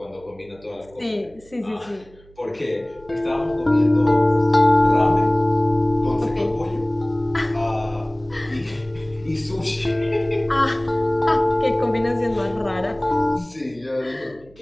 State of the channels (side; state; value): right; noise; hum, 26 dB below the sound